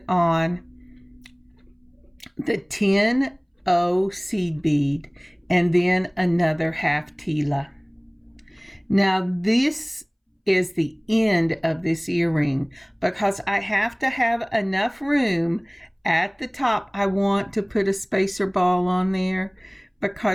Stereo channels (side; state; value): both; identical; correlation 1.00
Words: on the 10-0 seed bead and then another half Tila. Now this is the end of this earring because I have to have enough room at the top. I want to put a spacer ball on there